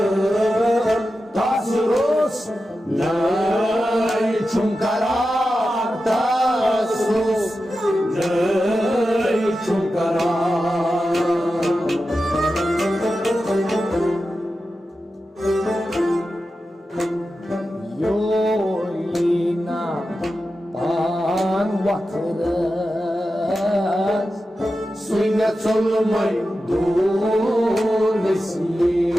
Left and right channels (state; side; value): normal; both; correlation 0.92